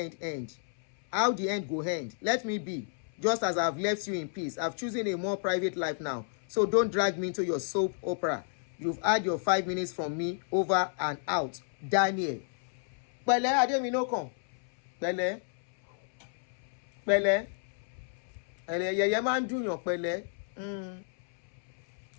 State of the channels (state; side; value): silent; right; 57 dB below the other